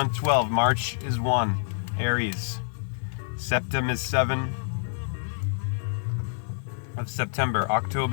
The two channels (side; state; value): right; silent; 55 dB below the other